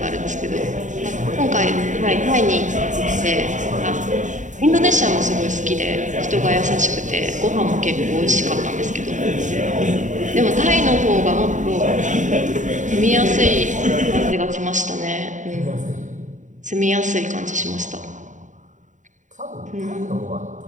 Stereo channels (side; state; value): left; late; 0.36 ms